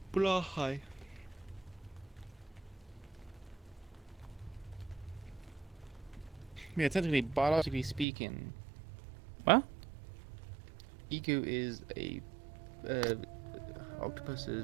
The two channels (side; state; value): left; drops out; at 8.1 s